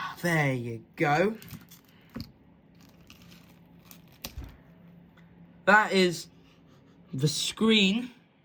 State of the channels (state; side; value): identical; both; correlation 1.00